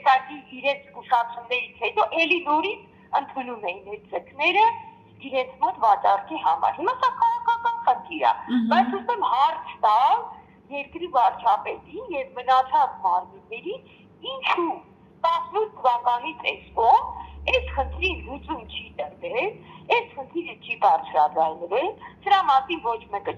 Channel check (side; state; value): both; identical; correlation 1.00